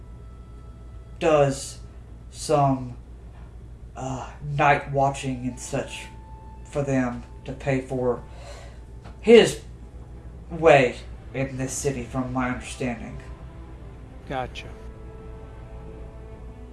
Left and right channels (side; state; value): both; identical; correlation 1.00